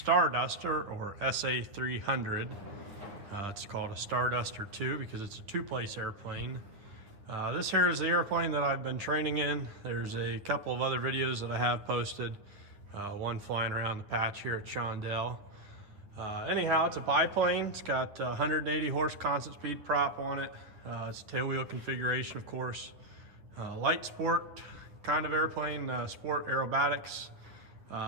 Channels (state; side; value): late; left; 10 ms